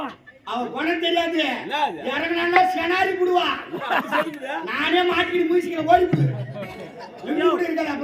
அவன் குணம் தெரியாது. என்னது? இறங்கினா செனாரி புடுவா. நானே மாட்டிட்டு மியூசிக்கில் ஓடிப்பு. இருக்காது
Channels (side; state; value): both; identical; correlation 1.00